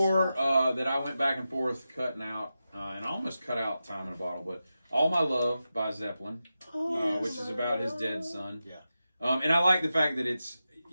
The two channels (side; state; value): both; inverted; correlation -0.91